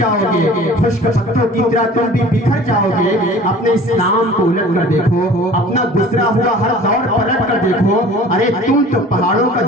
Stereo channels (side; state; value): both; normal; correlation 0.45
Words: گے، خشک پتوں کی طرح تم بھی بکھر جاؤ گے۔ اپنے اسلام کو الٹ کر دیکھو، اپنا گزرا ہوا ہر دور پلٹ کر دیکھو، ارے تم تو پہاڑوں کا